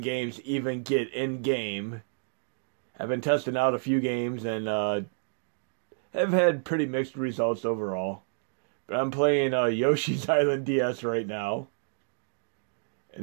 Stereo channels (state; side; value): silent; left; digital silence